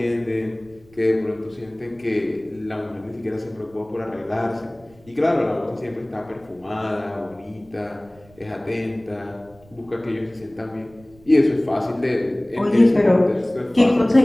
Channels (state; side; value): noise; right; rumble, 27 dB below the sound